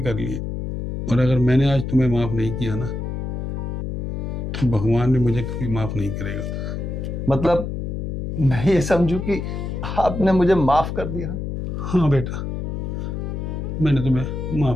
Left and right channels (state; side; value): noise; left; hum, 4 dB below the sound